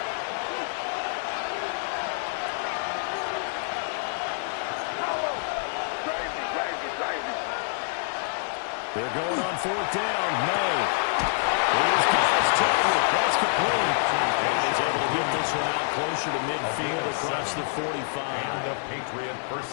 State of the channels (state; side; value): silent; right; 60 dB below the other